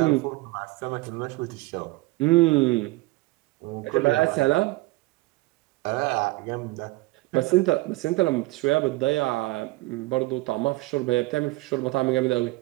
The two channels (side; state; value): left; quieter; 21.0 dB